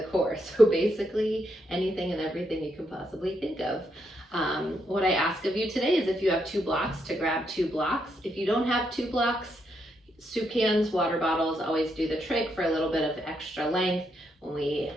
core. So basically anything and everything you can possibly think of. What I ask of you today is if you have 2 blocks, to grab 2 blocks. If you don't have 2 blocks, soup cans, water bottles always do the trick for a little bit of extra length when we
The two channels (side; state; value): both; normal; correlation 0.79